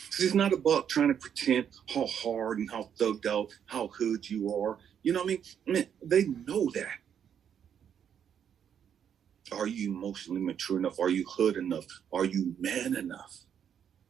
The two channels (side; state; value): left; quieter; 8.5 dB